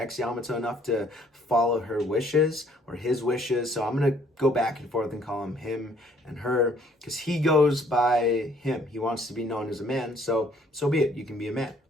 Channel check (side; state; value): both; normal; correlation 0.62